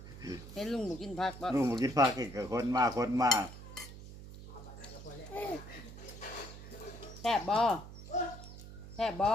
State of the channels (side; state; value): right; noise; hum, 14 dB below the sound